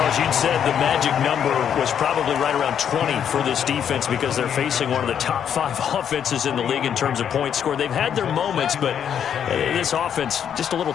you'd said the magic number was probably right around 20 for this defense because they're facing one of the top 5 offenses in the league in terms of points scored. They've had their moments, but this offense just a little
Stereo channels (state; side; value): quieter; right; 8.7 dB